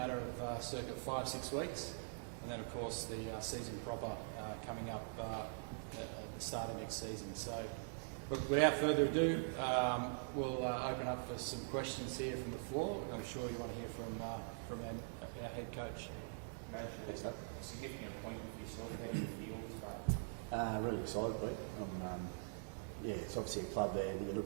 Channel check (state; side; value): silent; left; digital silence